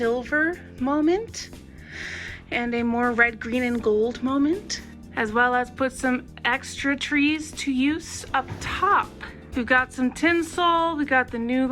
moment and a more red, green, and gold moment, as well as put some extra trees to use up top. We've got some tinsel, we got the new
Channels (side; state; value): both; identical; correlation 1.00